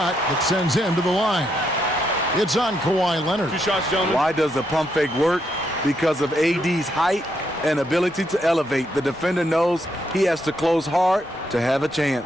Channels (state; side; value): normal; both; correlation 0.78